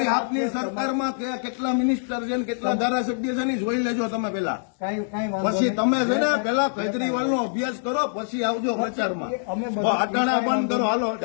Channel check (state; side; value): silent; right; 62 dB below the other